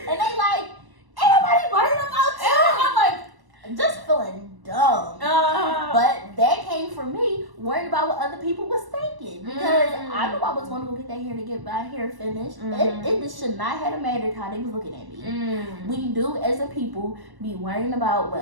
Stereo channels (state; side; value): late; left; 1.1 ms